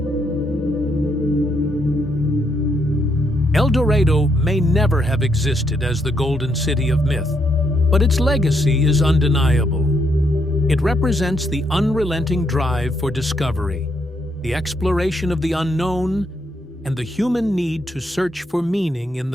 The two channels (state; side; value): normal; both; correlation 0.76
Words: El Dorado may never have existed as the golden city of myth, but its legacy is undeniable. It represents the unrelenting drive for discovery, the exploration of the unknown, and the human need to search for meaning in